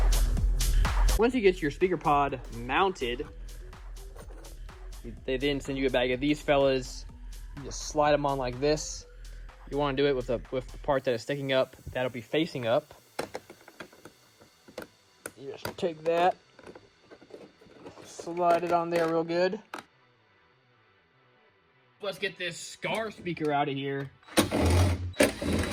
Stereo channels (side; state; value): both; identical; correlation 1.00